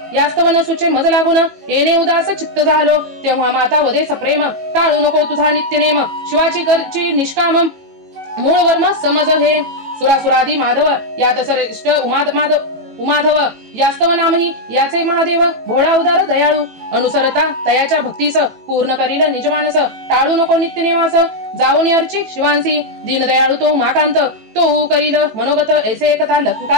यास्तवन सुचे मज लागून येणे उदास चित्त झालो तेव्हा माता वदे सप्रेम टाळू नको तुझा नित्यनेम शिवाची करची निष्काम मूळ वर्म समज हे सुरासुरादी माधव यात श्रेष्ठ उमाधव यास्तव नामही याचे महादेव भोळा उदार दयाळू अनुसरता तयाच्या भक्तीस पूर्ण करील निजमानस टाळू नको नित्यनेमास जाऊन अर्चित शिवांसी दीनदयाळू तो उमाकांत तो करील मनोगत ऐसे एकता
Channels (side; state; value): left; late; 18 ms